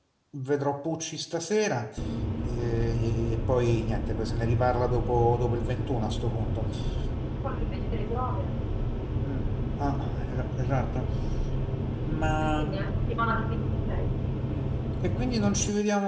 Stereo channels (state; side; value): identical; both; correlation 1.00